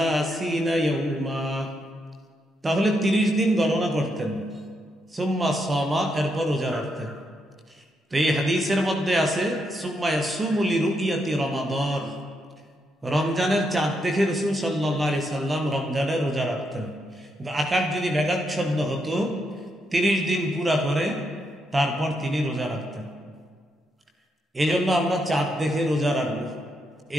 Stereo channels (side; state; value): both; normal; correlation 0.80